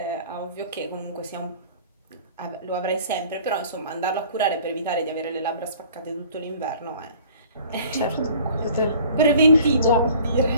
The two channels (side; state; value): both; inverted; correlation -0.50